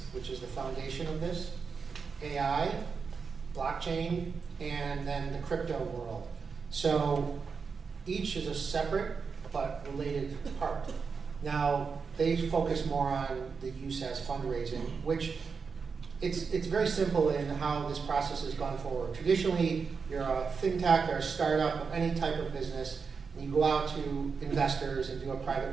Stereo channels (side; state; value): left; quieter; 5.4 dB